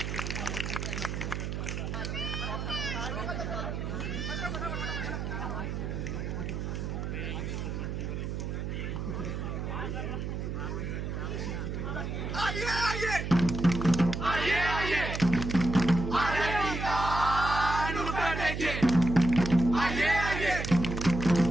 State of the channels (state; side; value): noise; right; hum, 4 dB below the sound